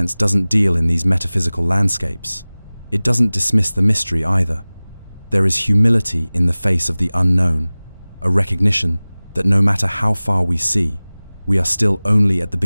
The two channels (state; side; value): inverted; both; correlation -0.99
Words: doesn't deal in these metaphysical landscapes, it doesn't dismiss the mystery either. There is humility in the face of the unknown, a recognition that no matter how far we see, we are still only at the